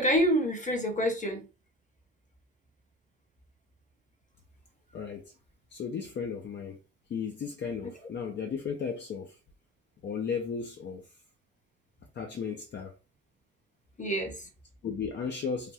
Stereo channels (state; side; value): normal; both; correlation 0.35